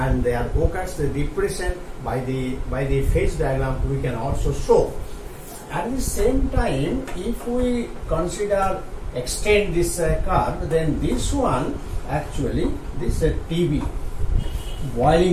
there occurs the depression by the phase diagram we can also show. At the same time, if we extend this curve, then this one actually this TB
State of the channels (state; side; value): identical; both; correlation 1.00